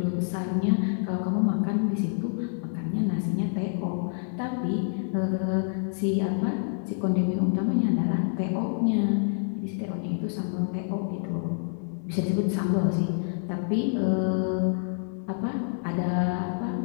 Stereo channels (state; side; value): silent; right; 60 dB below the other